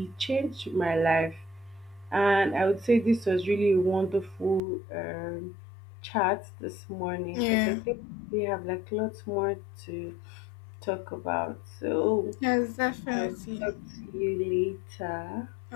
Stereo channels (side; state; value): right; drops out; at 4.6 s